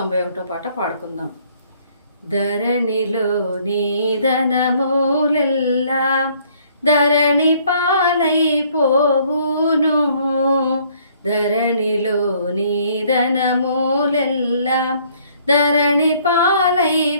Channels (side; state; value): both; inverted; correlation -0.62